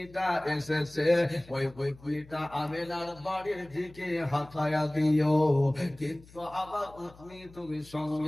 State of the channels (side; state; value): left; noise; hum, 23 dB below the sound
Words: এসেছে, ওই উটনিটা আমিনার বাড়ির দিকে হাঁটায়া দিও, কিন্তু আমার উটনি তুমি